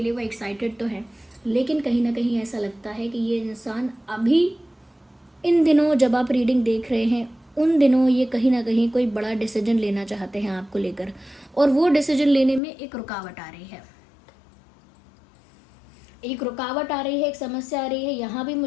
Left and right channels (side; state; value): right; drops out; at 12.6 s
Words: लिए वो एक्साइटेड तो हैं, लेकिन कहीं ना कहीं ऐसा लगता है कि ये इंसान अभी इन दिनों जब आप रीडिंग देख रहे हैं उन दिनों ये कहीं ना कहीं कोई बड़ा डिसीजन लेना चाहते हैं आपको लेकर, और वो डिसीजन लेने में एक रुकावट आ रही है, एक रुकावट आ रही है, एक समस्या आ रही है। यहाँ भी